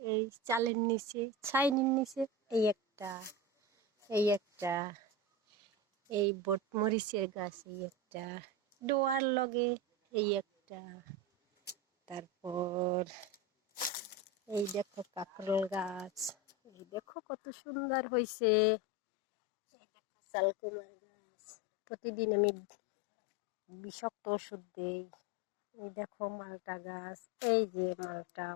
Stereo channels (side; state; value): right; drops out; at 17.0 s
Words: এই চালের নিচে, ছাইনির নিচে, এই একটা এই বটমরিচের গাছ, এই একটা ডোয়ার লগে, এই একটা, তারপর এই দেখো কাঁকরোল গাছ, এই দেখো কত সুন্দর হয়েছে। এই দেখো চালকুমার গাছ, প্রতিদিন আমি বিষাক্ত ওষুধ দেই। এই দেখো মালটা গাছ, এই যে মালটা,